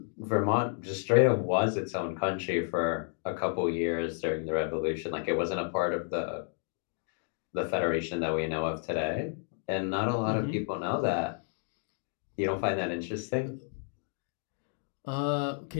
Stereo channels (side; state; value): right; silent; 57 dB below the other